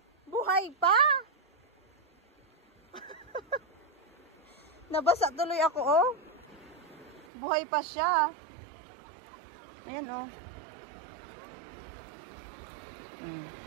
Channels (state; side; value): drops out; left; at 7.2 s